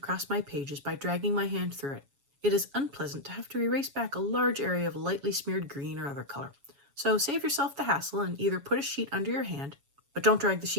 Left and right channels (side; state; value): left; late; 7.2 ms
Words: my pages by dragging my hand through it. It is unpleasant to have to erase back a large area of lightly smeared green or other color. So save yourself the hassle and either put a sheet under your hand, but don't drag the